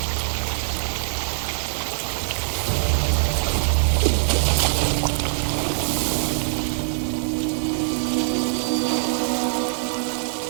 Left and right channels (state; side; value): silent; left; digital silence